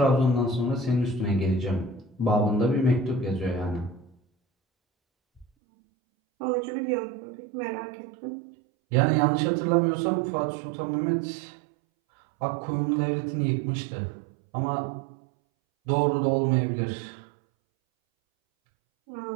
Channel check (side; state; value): left; drops out; at 5.5 s